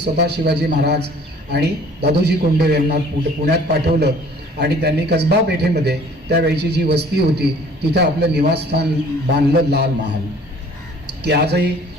शिवाजी महाराज आणि दादोजी कोंडदेव यांना पुण्यात पाठवलं आणि त्यांनी कसबा पेठेमध्ये त्यावेळची जी वस्ती होती तिथं आपलं निवासस्थान बांधलं, लाल महाल, की आजही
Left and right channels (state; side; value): normal; both; correlation 0.53